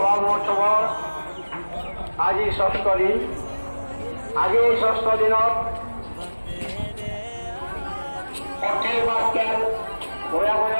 মহোৎসৱৰ আজি ৬ষ্ঠ দিন। আজি এই ৬ষ্ঠ দিনত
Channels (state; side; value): inverted; both; correlation -1.00